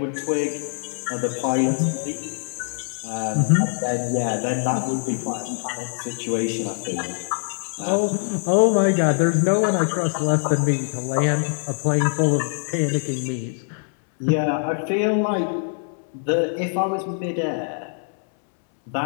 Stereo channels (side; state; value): right; silent; 63 dB below the other